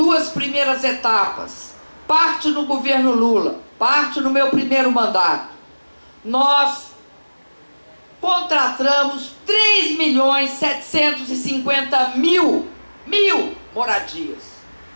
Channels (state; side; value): inverted; both; correlation -1.00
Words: primeiras etapas, parte no governo Lula, parte no meu primeiro mandato, nós contratamos 3.750.000 moradias.